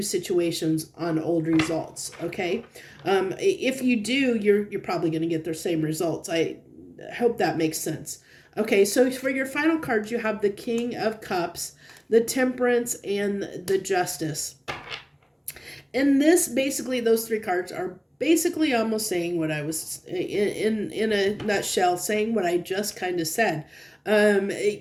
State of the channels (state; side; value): identical; both; correlation 1.00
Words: situations on old results. Okay. If you do, you're probably going to get the same results. I hope that makes sense. Okay. So for your final cards, you have the King of Cups, the Temperance, and the Justice. And basically, those three cards are basically almost saying what I was, in a nutshell, saying what I just kind of said.